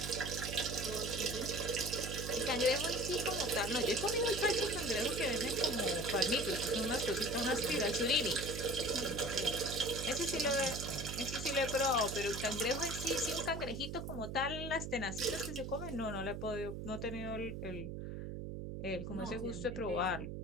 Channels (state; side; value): noise; right; hum, 6 dB below the sound